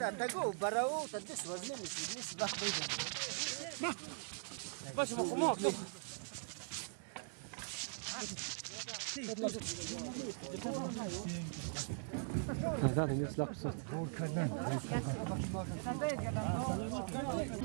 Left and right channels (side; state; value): left; silent; digital silence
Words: هذا الناس لا قصة